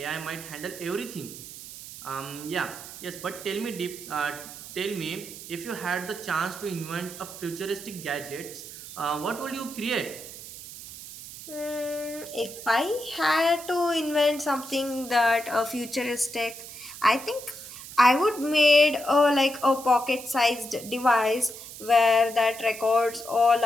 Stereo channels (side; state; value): right; noise; hiss, 13 dB below the sound